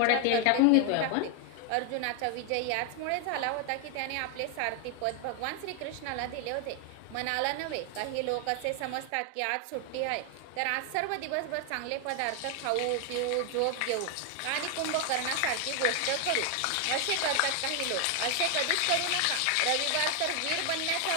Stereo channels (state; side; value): different; both; correlation 0.00